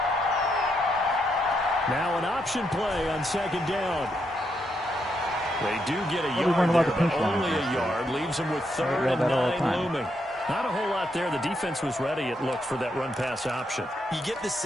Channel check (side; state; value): both; normal; correlation 0.79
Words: Now an option play on 2nd down. They do get a yard there, but only a yard. Leaves them with 3rd and 9 looming. Not a whole lot there. The defense was ready, it looked, for that run-pass option. You get the